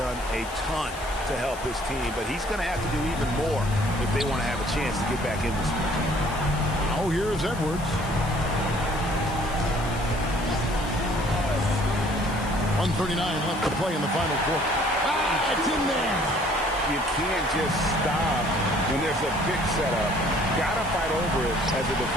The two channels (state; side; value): noise; left; hiss, 16 dB below the sound